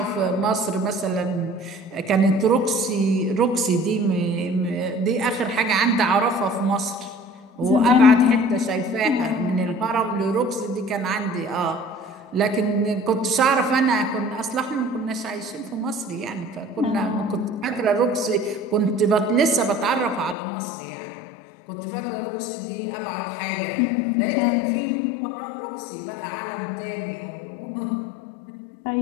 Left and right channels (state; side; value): drops out; right; at 20.4 s